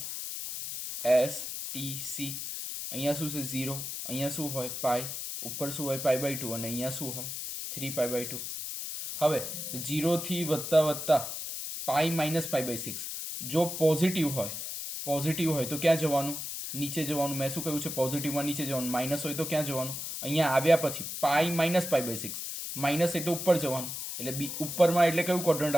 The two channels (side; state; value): left; noise; hiss, 6 dB below the sound